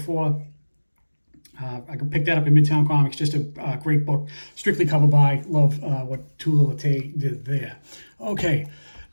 I could pick that up in Midtown Comics. Just a great book, strictly cover by. Love what Tula Late did there. Okay,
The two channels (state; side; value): inverted; both; correlation -1.00